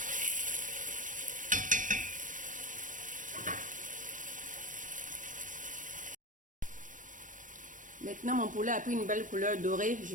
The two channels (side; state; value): left; late; 0.38 ms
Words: Maintenant, mon poulet a pris une belle couleur dorée.